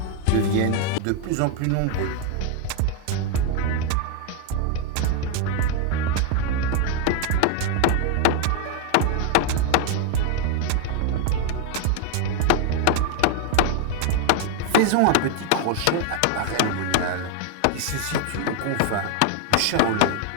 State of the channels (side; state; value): both; different; correlation 0.01